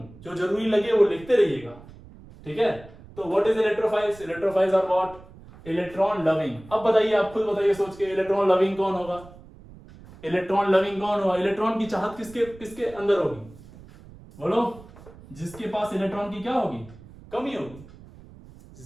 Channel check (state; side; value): noise; right; rumble, 20 dB below the sound